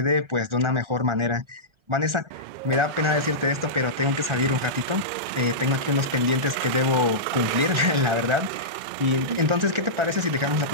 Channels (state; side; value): late; left; 2.1 ms